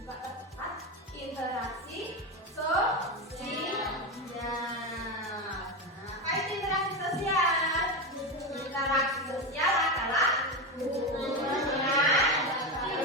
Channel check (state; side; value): normal; both; correlation 0.15